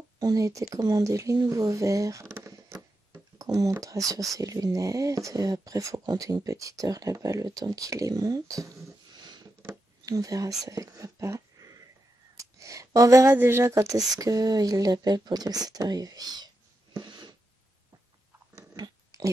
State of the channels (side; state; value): both; normal; correlation 0.87